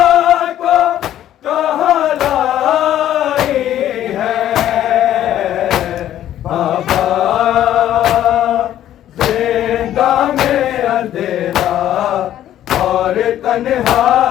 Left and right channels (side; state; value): right; quieter; 11.9 dB